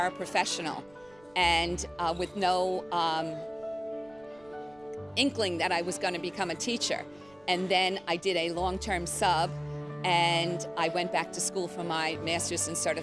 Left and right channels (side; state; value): right; noise; rumble, 29 dB below the sound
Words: and with no inkling that I was going to become a teacher. And then I did a long-term sub and I went back to school for my master's in